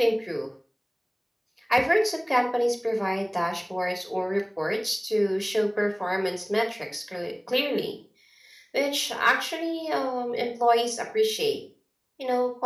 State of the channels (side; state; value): both; identical; correlation 1.00